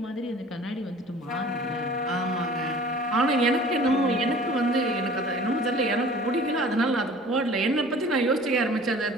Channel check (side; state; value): both; normal; correlation 0.46